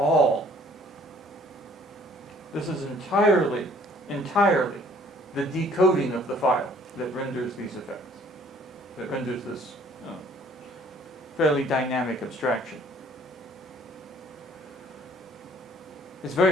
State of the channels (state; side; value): normal; both; correlation 0.57